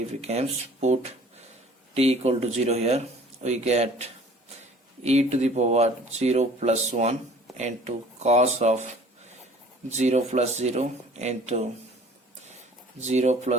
becomes, put t equal to 0 here, we get e to the power 0 plus 1 into cos of 0 plus 0 into 0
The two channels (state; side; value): normal; both; correlation 0.50